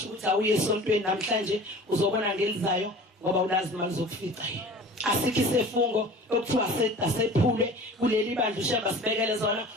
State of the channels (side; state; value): both; normal; correlation 0.42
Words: ukuthi awuye esontweni namhlanje uzobona ngelizayo ngoba ulazi imali zokufica yena asikho isefungo okuthiwa sephule kuleli bandla uShembe sibekele zona